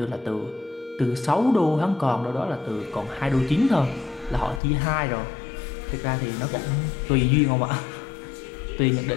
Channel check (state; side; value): drops out; right; at 4.6 s